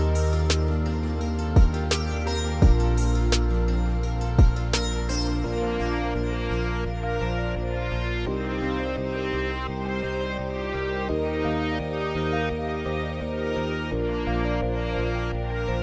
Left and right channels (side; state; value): both; identical; correlation 1.00